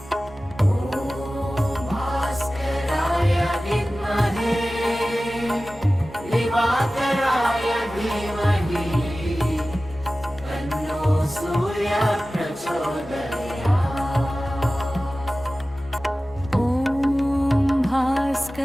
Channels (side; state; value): both; normal; correlation 0.96